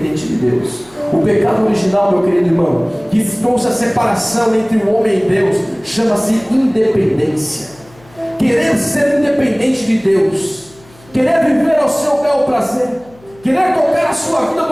de Deus. O pecado original, meu querido irmão, que trouxe a separação entre o homem e Deus, chama-se independência. Querer ser independente de Deus, querer viver ao seu bel prazer, querer tocar a sua vida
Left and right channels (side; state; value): left; noise; hum, 27 dB below the sound